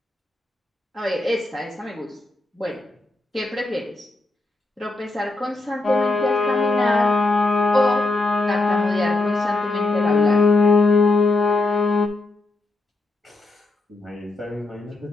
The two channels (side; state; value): right; quieter; 3.1 dB